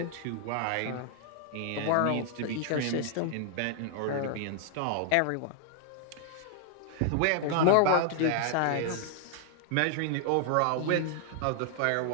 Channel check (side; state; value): both; different; correlation 0.00